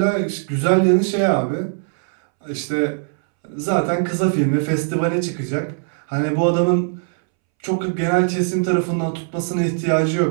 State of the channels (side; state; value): left; silent; 66 dB below the other